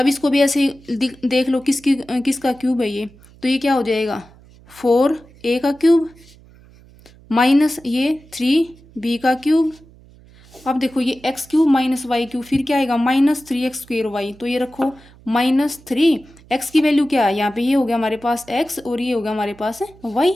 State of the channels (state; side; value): noise; right; hum, 25 dB below the sound